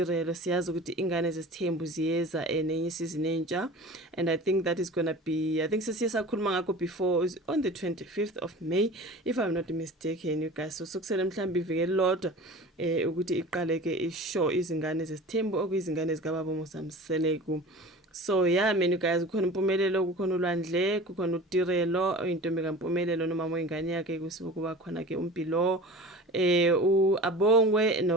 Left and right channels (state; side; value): normal; both; correlation 0.38